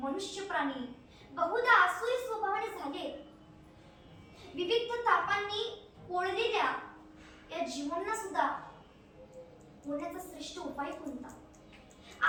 प्राणी बहुधा आसुरी स्वभावाने झाले. विविध तापांनी पोळलेल्या या जीवांना सुद्धा होण्याचा श्रेष्ठ उपाय कोणता?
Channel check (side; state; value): both; identical; correlation 1.00